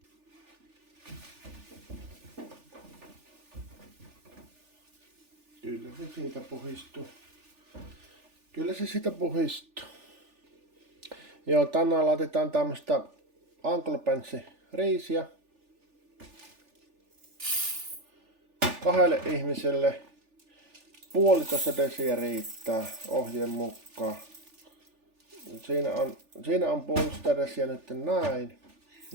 Kyllä se siitä puhistuu. Kyllä se siitä puhistuu. Joo, tänään laitetaan tämmöstä Uncle riisiä. 2 ihmiselle 1,5 desiä riittää ohjeen mukaan. Siinä on 1,5 desiä nyt näin.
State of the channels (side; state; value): left; late; 3.4 ms